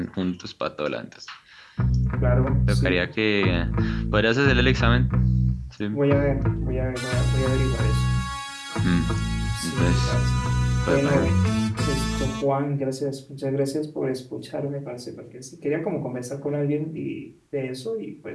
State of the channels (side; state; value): both; identical; correlation 1.00